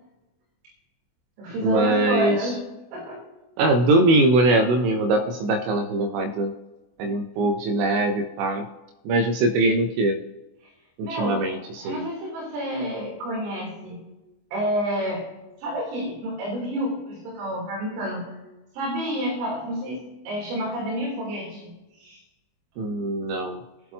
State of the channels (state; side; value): late; left; 24 ms